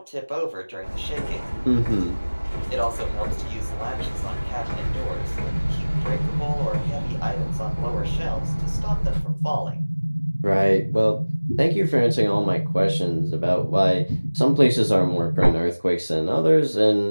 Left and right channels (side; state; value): both; inverted; correlation -1.00